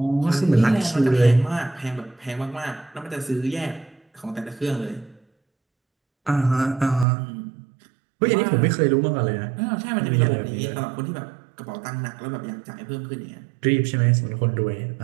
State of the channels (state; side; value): drops out; left; at 7.1 s